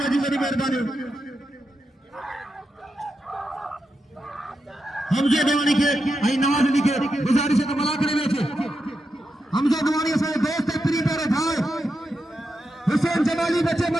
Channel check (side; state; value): both; normal; correlation 0.87